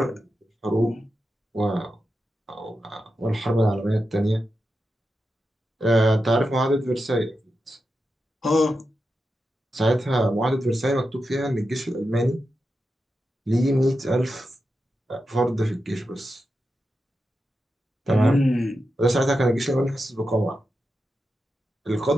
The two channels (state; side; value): normal; both; correlation 0.89